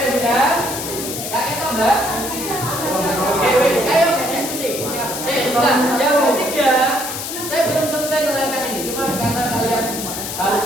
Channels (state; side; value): noise; left; hiss, 6 dB below the sound